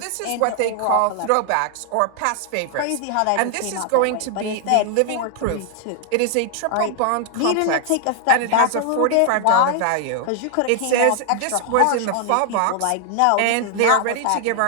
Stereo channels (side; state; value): both; different; correlation 0.00